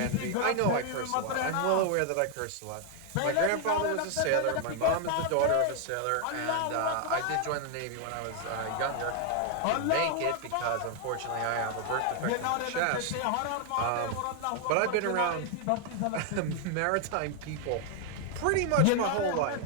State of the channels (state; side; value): different; both; correlation 0.00